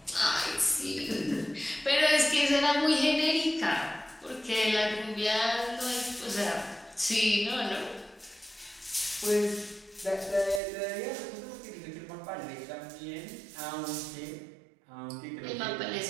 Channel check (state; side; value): drops out; left; at 10.6 s